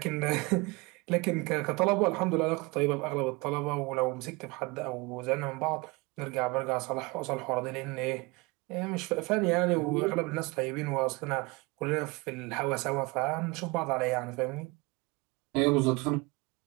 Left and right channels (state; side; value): quieter; left; 25.4 dB